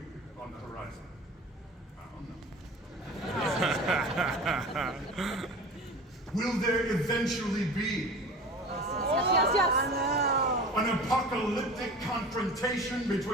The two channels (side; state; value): both; normal; correlation 0.37